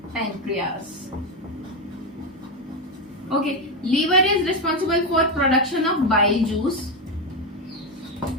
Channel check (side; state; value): both; normal; correlation 0.10